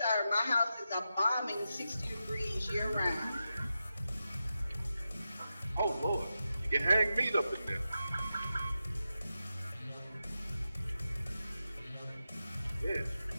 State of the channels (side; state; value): both; inverted; correlation -0.90